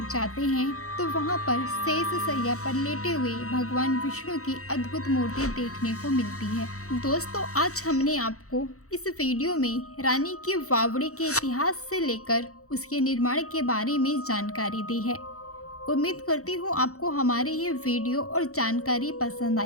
जाते हैं तो वहां पर शेष शैया पर लेटे हुए भगवान विष्णु की अद्भुत मूर्ति देखने को मिलती है। दोस्तों, आज हमने आपको इस वीडियो में रानी की बावड़ी के इतिहास से लेकर उसके निर्माण के बारे में जानकारी दी है। उम्मीद करती हूँ आपको हमारी ये वीडियो और जानकारी पसंद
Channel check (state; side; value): late; right; 0.65 ms